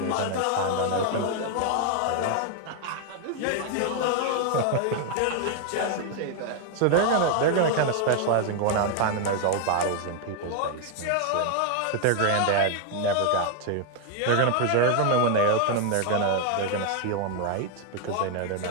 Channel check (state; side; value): different; both; correlation 0.00